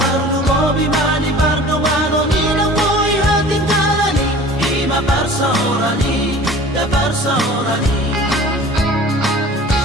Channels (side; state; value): both; normal; correlation 0.44